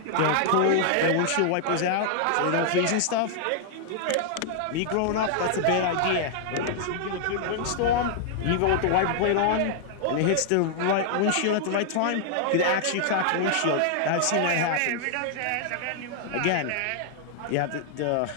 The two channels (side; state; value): both; different; correlation -0.01